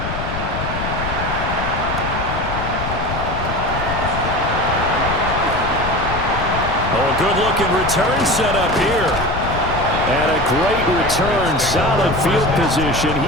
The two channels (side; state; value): left; noise; rumble, 6 dB below the sound